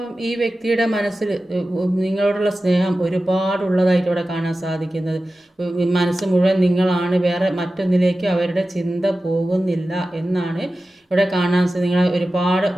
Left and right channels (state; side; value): normal; both; correlation 0.94